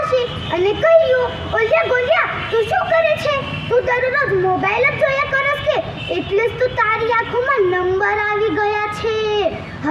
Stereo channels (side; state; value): both; identical; correlation 1.00